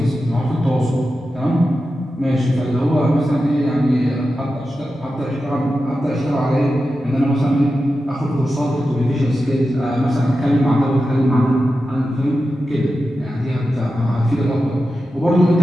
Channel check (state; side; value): normal; both; correlation 0.91